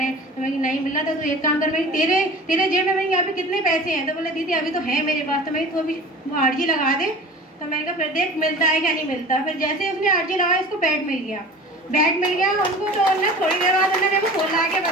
तो मैं नहीं मिल रहा था, तो एक काम कर, मैं तेरे जेब में मैंने यहाँ पे कितने पैसे हैं। तो बोले दीदी अभी तो है मेरे पास। तो मैं तो अभी वो अर्जी लगा दे। तो मैंने कहा फिर देख मिलता है क्या नहीं मिलता। फिर जैसे उसने अर्जी लगाई उसको बेड मिल गया उनको। तो उन्होंने थोड़ी देर बाद उन्होंने मेरे को फ़ोन लगा के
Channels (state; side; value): normal; both; correlation 0.39